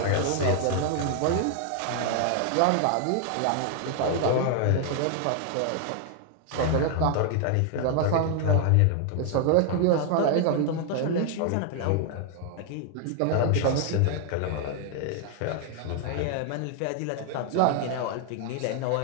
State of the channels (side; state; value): both; different; correlation 0.00